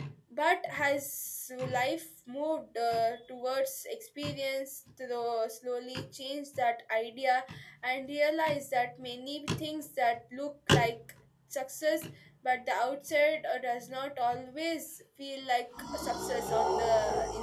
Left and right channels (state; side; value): identical; both; correlation 1.00